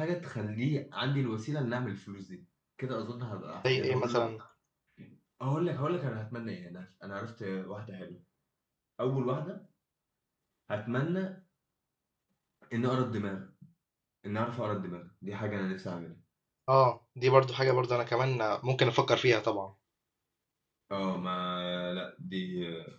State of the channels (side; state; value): both; identical; correlation 1.00